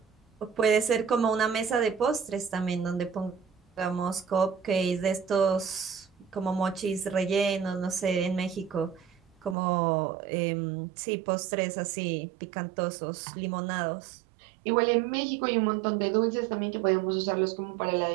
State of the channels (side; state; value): left; drops out; at 9.6 s